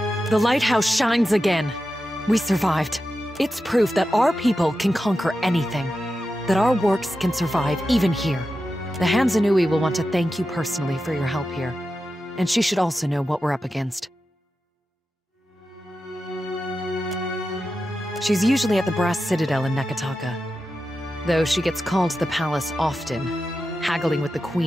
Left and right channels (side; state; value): both; normal; correlation 0.91